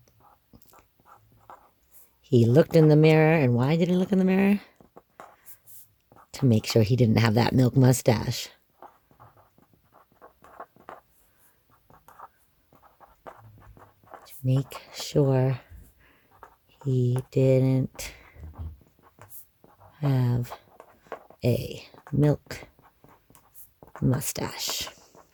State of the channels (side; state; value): both; identical; correlation 1.00